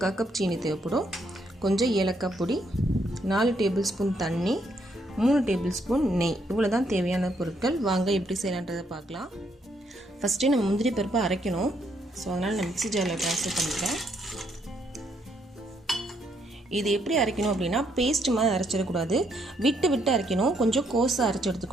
கப் சீனி தேவைப்படும். கொஞ்சம் ஏலக்காய் பொடி, 4 டேபிள் ஸ்பூன் தண்ணி, 3 டேபிள் ஸ்பூன் நெய். இவ்வளோ தான் தேவையான பொருட்கள். வாங்க எப்படி செய்யலான்றதை பார்க்கலாம். ஃபஸ்ட்டு நம்ம முந்திரி பருப்பை அரைக்கணும். ஸோ அதனால் நான் மிக்ஸி ஜாரில் ட்ரான்ஸ்ஃபர் பண்ணிக்கிறேன். இது எப்படி அரைக்கணும் அப்படின்னா பேஸ்ட் மாதிரி அரைச்சிடக்கூடாது, விட்டு விட்டு அரைக்கணும். கொஞ்சம் கோஸாக அரைச்சி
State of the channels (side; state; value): both; normal; correlation 0.73